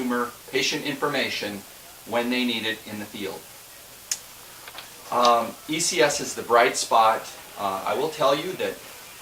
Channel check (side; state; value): both; identical; correlation 1.00